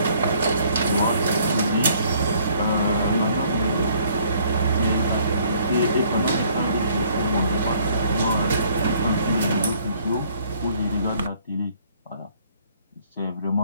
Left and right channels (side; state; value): both; inverted; correlation -0.61